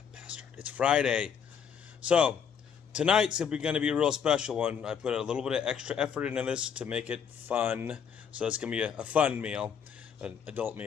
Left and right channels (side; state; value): right; quieter; 7.4 dB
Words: bastard. It's Friday. So, tonight's going to be a real special one. I put a little bit of extra effort into this to make it fun. So, it's going to be a fun meal, an adult